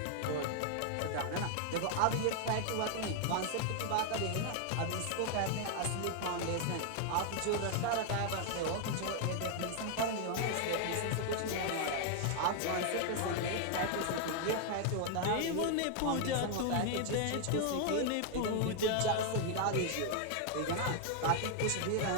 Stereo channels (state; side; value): different; both; correlation 0.00